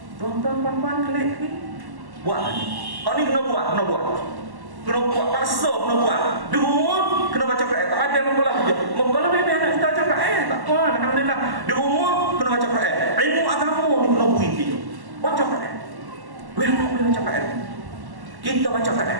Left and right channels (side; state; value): left; late; 1.1 ms